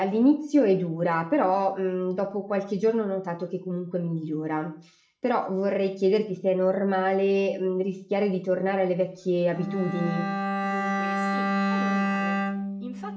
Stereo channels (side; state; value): both; identical; correlation 1.00